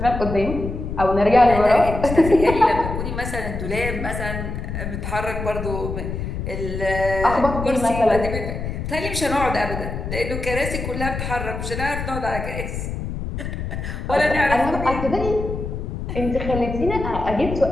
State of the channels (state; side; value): noise; left; rumble, 5 dB below the sound